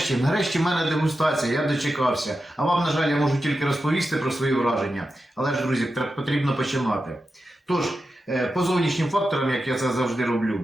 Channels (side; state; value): both; normal; correlation 0.90